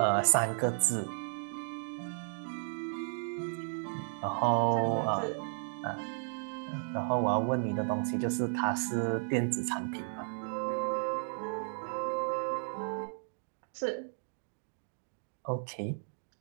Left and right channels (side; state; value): left; silent; 55 dB below the other